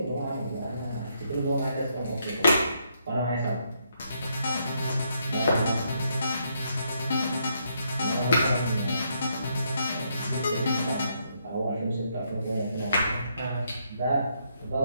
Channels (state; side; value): inverted; both; correlation -0.75